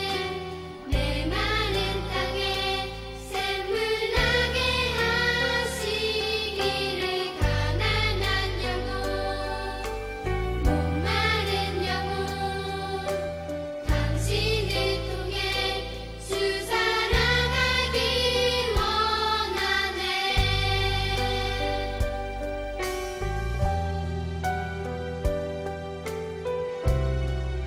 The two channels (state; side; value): identical; both; correlation 1.00